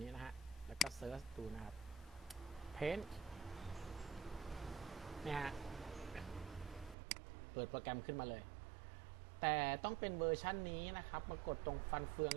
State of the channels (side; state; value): left; drops out; at 7.0 s